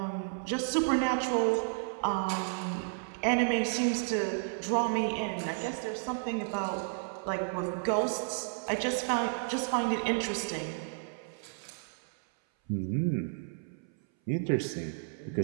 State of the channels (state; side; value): silent; left; 56 dB below the other